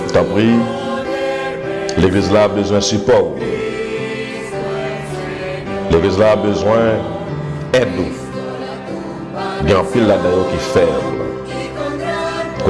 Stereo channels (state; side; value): identical; both; correlation 1.00